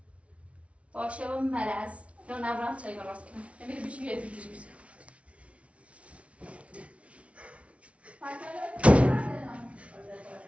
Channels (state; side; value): late; left; 0.063 ms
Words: باشه و مرز یا نبرم چای راست کنم نمیده بیشی یه فیلم بیزه